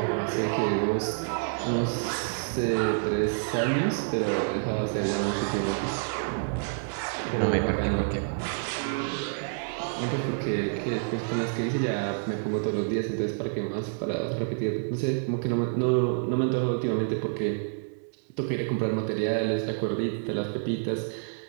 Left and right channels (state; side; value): silent; left; 59 dB below the other